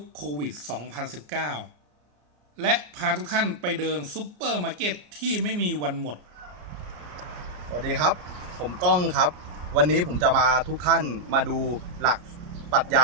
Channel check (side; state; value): left; late; 33 ms